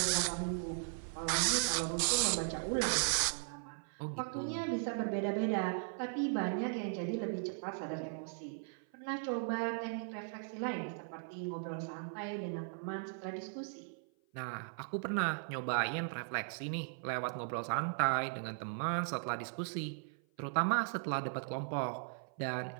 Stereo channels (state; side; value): silent; left; 53 dB below the other